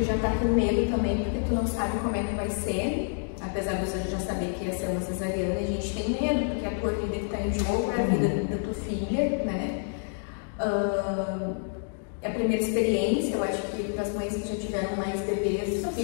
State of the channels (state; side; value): silent; right; 59 dB below the other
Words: já tá com medo também, porque tu não sabe como é que vai ser, apesar de você já saber que ia ser uma cesariana, a gente tem medo, porque a tua vida que tá em jogo é a vida da tua filha, né. É a primeira experiência, eu acho que para as mães que já tiveram mais bebês